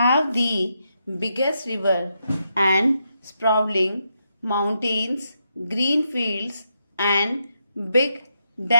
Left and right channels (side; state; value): both; inverted; correlation -0.82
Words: the biggest river and sprawling mountains, green fields, and big